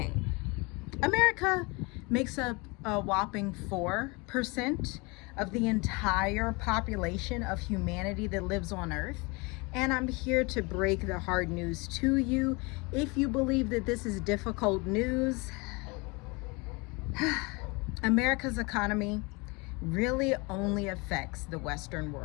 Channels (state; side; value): quieter; right; 27.5 dB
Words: America makes up a whopping 4% of the entire population of humanity that lives on Earth. And I'm here to break the hard news to you. If you believe that this is difficult news, America's economy really only affects the Western